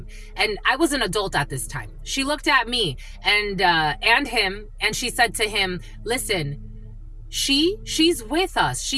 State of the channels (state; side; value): identical; both; correlation 1.00